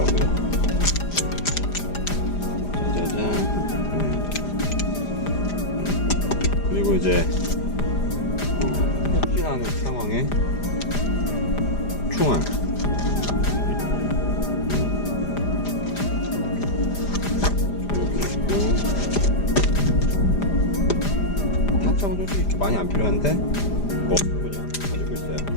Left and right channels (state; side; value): late; right; 5.0 ms